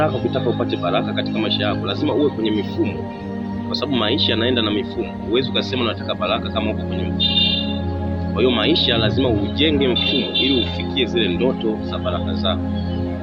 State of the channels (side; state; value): both; identical; correlation 1.00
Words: ukitaka upate baraka katika maisha yako lazima uwe kwenye mifumo, kwa sababu maisha yanaenda na mifumo. Huwezi ukasema unataka baraka kama uko kwenye mfumo. Kwa hiyo maisha lazima ujenge mfumo ili ufikie zile ndoto za baraka zako.